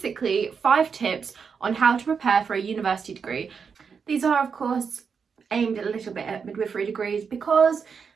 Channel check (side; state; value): left; quieter; 6.0 dB